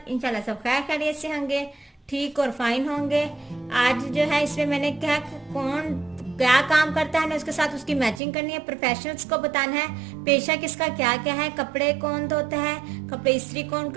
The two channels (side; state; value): left; drops out; at 8.2 s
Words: इंशाल्लाह सब खैर खैरियत से होंगे, ठीक और फाइन होंगे। आज जो है इसमें मैंने क्या कौन क्या काम करता है ना उसके साथ उसकी मैचिंग करनी है। प्रोफेशनल्स को बताना है पेशा किसका क्या क्या है, कपड़े कौन धोता है, कपड़े इस्त्री कौन